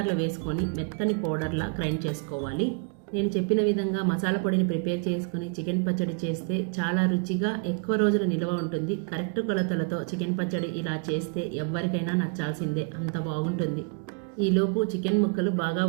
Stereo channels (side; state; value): left; quieter; 36.9 dB